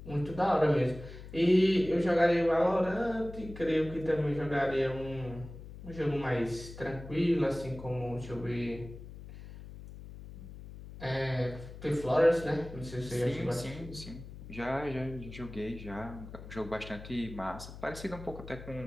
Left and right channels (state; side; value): noise; left; hum, 14 dB below the sound